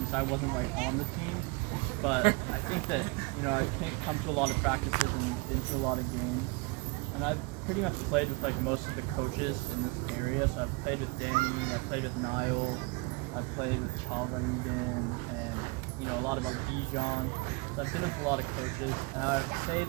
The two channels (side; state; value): left; quieter; 26.3 dB